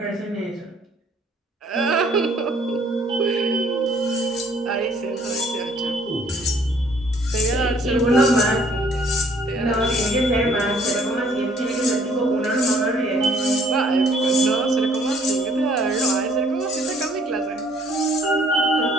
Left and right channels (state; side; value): normal; both; correlation 0.60